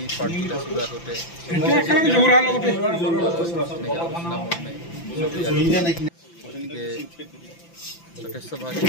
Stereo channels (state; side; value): late; right; 5.9 ms